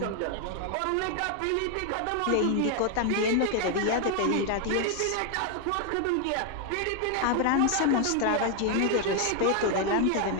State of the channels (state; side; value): different; both; correlation 0.00